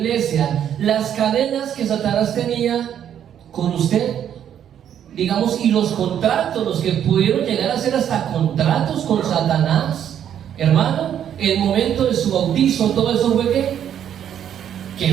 las cadenas que Satanás tenía con usted, digamos, y los contratos, los que pudieron llegar a hacer hasta contratos con Satanás, hermano, el momento de su bautizo, todo eso fue ¿qué?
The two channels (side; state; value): left; quieter; 9.6 dB